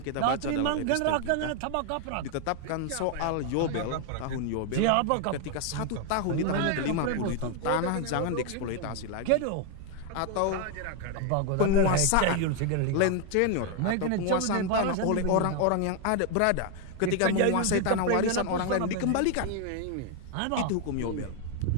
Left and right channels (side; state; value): both; different; correlation 0.01